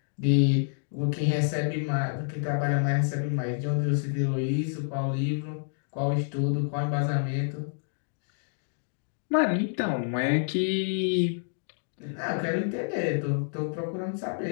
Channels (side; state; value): right; silent; digital silence